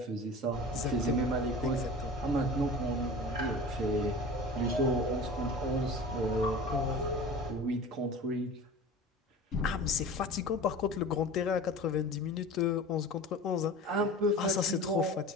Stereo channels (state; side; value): normal; both; correlation 0.37